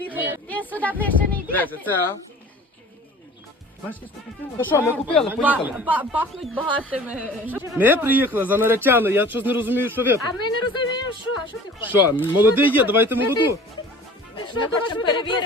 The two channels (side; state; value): both; normal; correlation 0.45